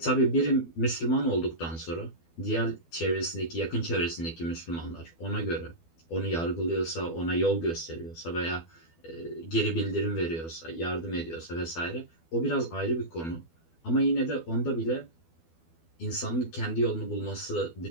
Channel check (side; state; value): right; late; 12 ms